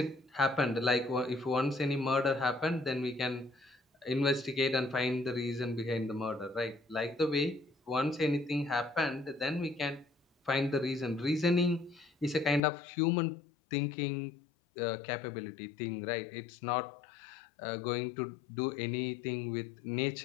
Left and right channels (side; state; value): right; drops out; at 12.6 s